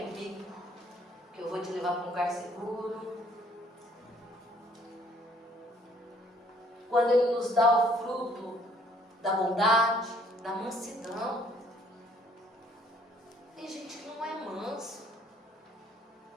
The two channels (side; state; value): both; normal; correlation 0.62